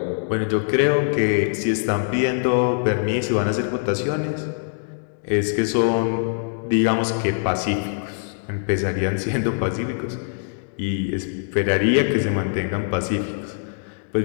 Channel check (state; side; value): silent; right; digital silence